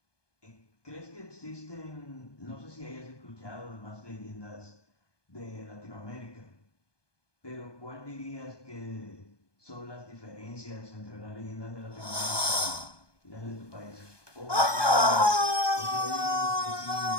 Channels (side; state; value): right; late; 1.2 ms